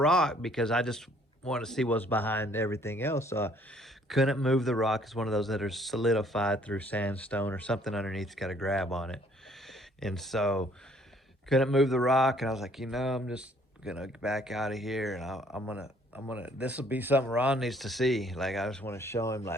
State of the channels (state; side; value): normal; both; correlation 0.61